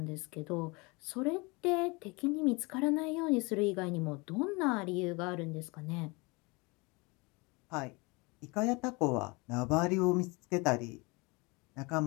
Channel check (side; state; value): right; quieter; 26.9 dB